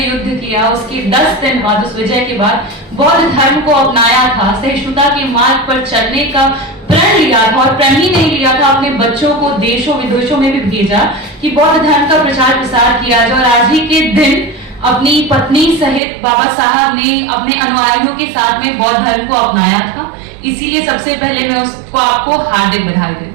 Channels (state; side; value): drops out; left; at 16.0 s